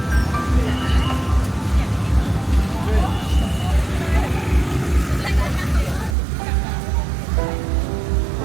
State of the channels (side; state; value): left; drops out; at 6.2 s